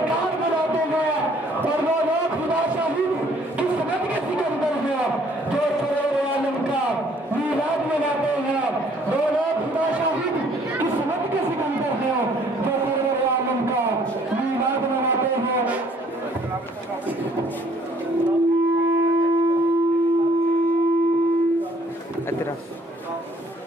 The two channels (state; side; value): normal; both; correlation 0.61